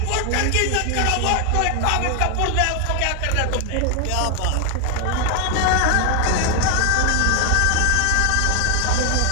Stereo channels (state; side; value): different; both; correlation 0.01